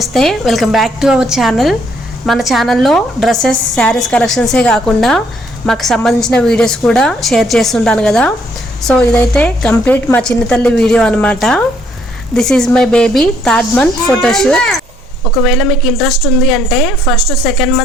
Welcome back to our channel. మన ఛానల్లో డ్రెస్సెస్, శారీస్ కలెక్షన్సే కాకుండా మాకు సంబంధించిన వీడియోస్ కూడా షేర్ చేస్తుంటాను కదా. సో ఇదైతే కంప్లీట్ మా చిన్న తల్లి వీడియో అనమాట. This is my baby third month photoshoot. ఒకవేళ మీకు ఇంట్రెస్ట్ ఉంది అంటే ఫస్ట్ సెకండ్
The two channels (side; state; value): both; normal; correlation 0.68